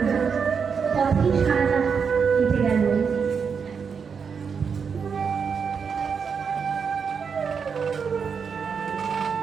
না, পথেই সারা রাত কেটে গেল।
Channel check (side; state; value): left; quieter; 6.2 dB